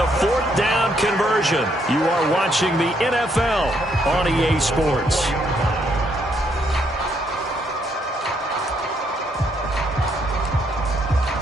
4th down conversion. You are watching the NFL on EA Sports.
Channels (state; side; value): normal; both; correlation 0.73